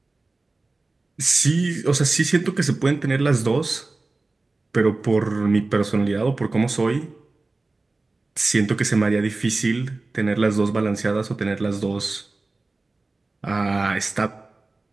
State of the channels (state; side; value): quieter; left; 3.4 dB